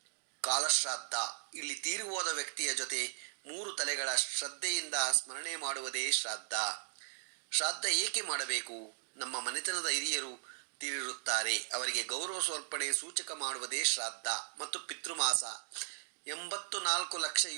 ಕಾಲಶ್ರಾದ್ದ. ಇಲ್ಲಿ ತೀರಿ ಹೋದ ವ್ಯಕ್ತಿಯ ಜೊತೆ 3 ತಲೆಗಳ ಶ್ರದ್ಧೆಯಿಂದ ಸ್ಮರಣೆ ಮಾಡುವುದೇ ಶ್ರಾದ್ದ. ಶ್ರಾದ್ದ ಏಕೆ ಮಾಡಬೇಕು? ನಮ್ಮ ಮನೆತನದ ಹಿರಿಯರು ತೀರಿರುತ್ತಾರೆ, ಅವರಿಗೆ ಗೌರವ ಸಮರ್ಪಣೆ ಸೂಚಕ ಮಾಡುವುದೇ ಶ್ರಾದ್ದ. ಮತ್ತು ಪಿತೃಮಾಸ. 84 ಲಕ್ಷ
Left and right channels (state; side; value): silent; left; digital silence